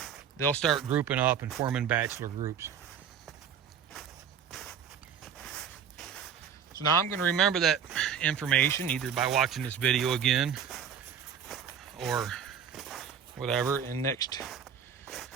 they'll start grouping up and forming bachelor groups. So now I'm going to remember that information either by watching this video again or whatever, and next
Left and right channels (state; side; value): quieter; left; 7.8 dB